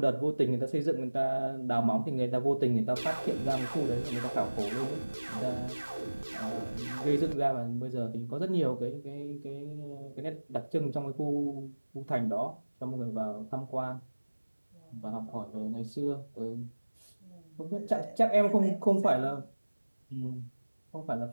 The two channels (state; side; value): inverted; both; correlation -1.00